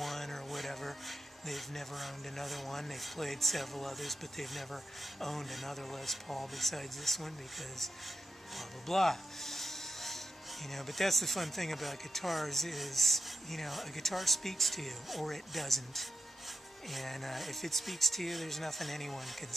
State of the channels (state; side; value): normal; both; correlation 0.87